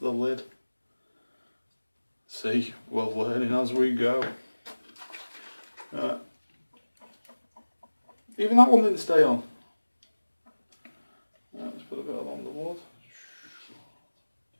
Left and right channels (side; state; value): both; inverted; correlation -1.00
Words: lid. See, we're learning as we go. Right. Even that one didn't stay on. Right, let's put a bit along the wood.